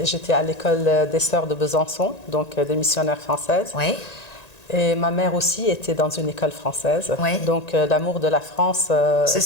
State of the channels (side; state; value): right; late; 1.9 ms